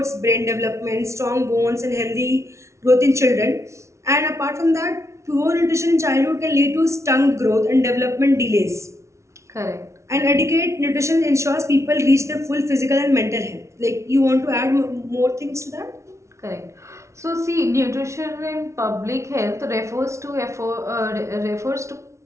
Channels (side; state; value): left; late; 0.14 ms